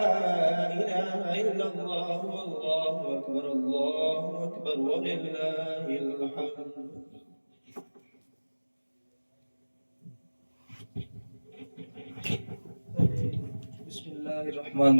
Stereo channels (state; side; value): inverted; both; correlation -1.00